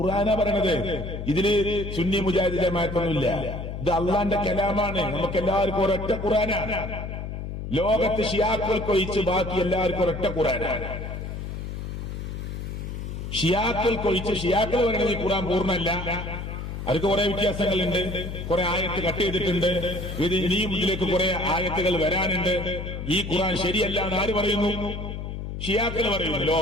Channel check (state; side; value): noise; left; hum, 6 dB below the sound